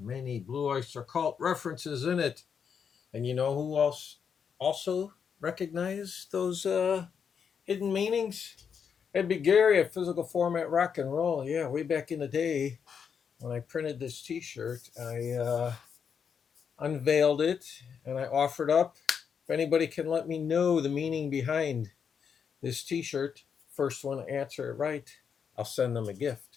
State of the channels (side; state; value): right; quieter; 6.9 dB